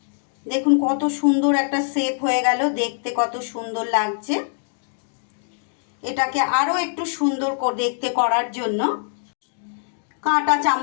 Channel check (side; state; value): right; silent; digital silence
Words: দেখুন কত সুন্দর একটা শেপ হয়ে গেল, দেখতে কত সুন্দর লাগছে। এটাকে আরও একটু সুন্দর দেখতে করার জন্য কাঁটা